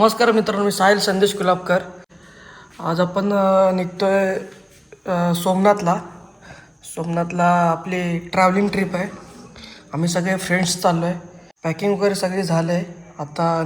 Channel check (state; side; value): identical; both; correlation 1.00